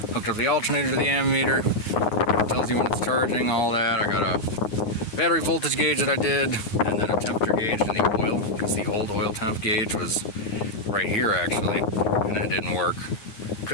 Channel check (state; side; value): late; right; 9.6 ms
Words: hooked up the alternator to the ammeter, tells you when it's charging, all that. I got a battery voltage gauge that I did, and then a temperature gauge in the oil, because the old oil temp gauge was right here actually, and it didn't work.